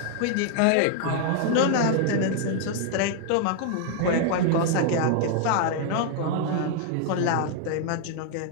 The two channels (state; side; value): different; both; correlation 0.00